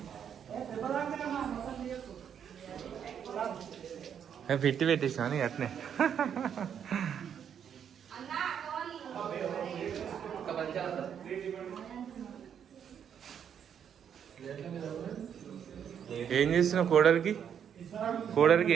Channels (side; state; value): left; quieter; 8.4 dB